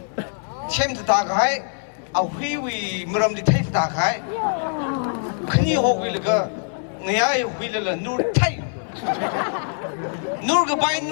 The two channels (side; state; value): right; silent; 59 dB below the other